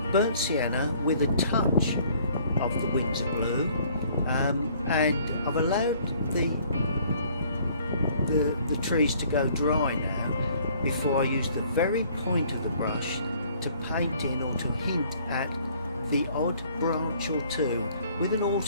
burnt sienna with a touch of the Windsor blue, and I've allowed the trees to go dry now before I use the very point of the brush to paint in or to hint at the odd branch or two. With an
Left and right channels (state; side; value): inverted; both; correlation -0.59